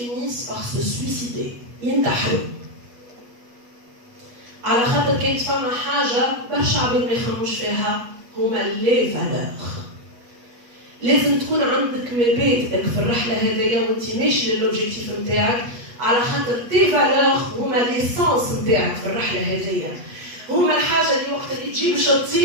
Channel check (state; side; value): late; left; 8.2 ms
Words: par se suicider ينتحروا على خاطر كانت فما حاجه برشا عباد ما يخمموش فيها هما لي فالور. لازم تكون عندك مبادئك في الرحله هذيا وانت ماشي للوبجيكتيف نتاعك على خاطر تي فالور هما ليسانس نتاعك في الرحله هذيا. هما الحاجه اللي وقت اللي تجي باش